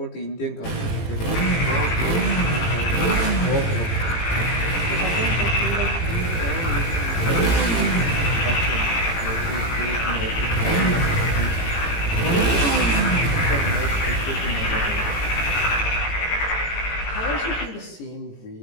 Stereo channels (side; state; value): right; late; 18 ms